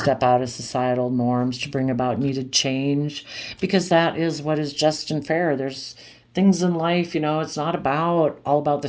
out of societal norms to bring about needed change because that is what is just and fair. There's things in life, you know, it's not about all about the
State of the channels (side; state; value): both; identical; correlation 1.00